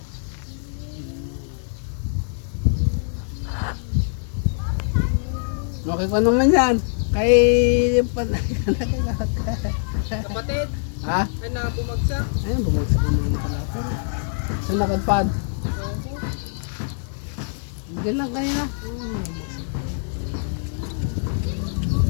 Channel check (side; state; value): right; silent; digital silence